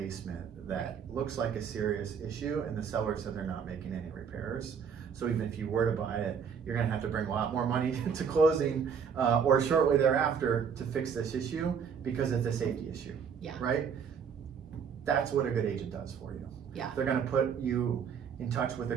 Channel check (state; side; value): quieter; left; 6.9 dB